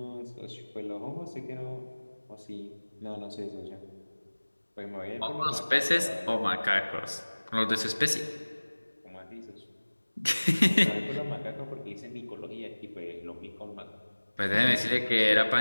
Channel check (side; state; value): both; inverted; correlation -1.00